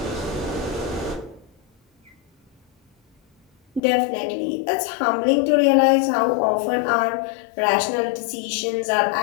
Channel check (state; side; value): drops out; right; at 3.8 s